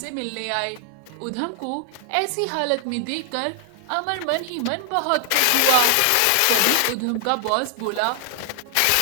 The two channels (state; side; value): different; both; correlation 0.00